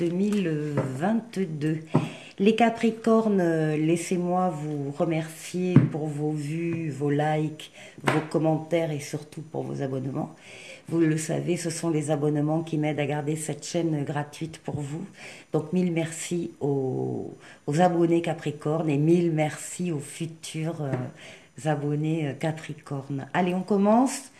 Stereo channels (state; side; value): identical; both; correlation 1.00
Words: Les Capricornes, laissez-moi vous remercier pour vos vues, vos likes, vos commentaires et surtout pour vos abonnements. Vous le savez, ce sont les abonnements qui m'aident à garder cette chaîne gratuite pour vous. Donc, mille merci aux abonnés Capricorne et mille merci aux futurs abonnés Capricorne. Allez, on commence.